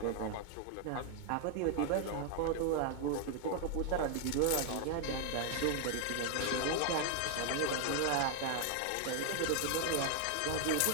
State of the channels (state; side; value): different; both; correlation 0.00